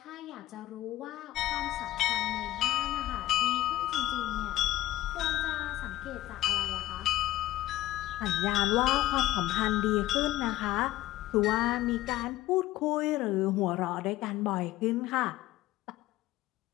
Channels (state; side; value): quieter; right; 15.6 dB